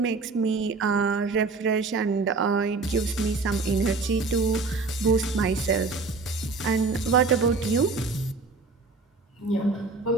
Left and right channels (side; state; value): left; quieter; 4.0 dB